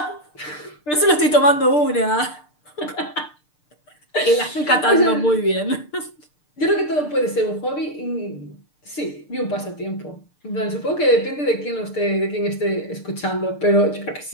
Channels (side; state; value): right; late; 6.7 ms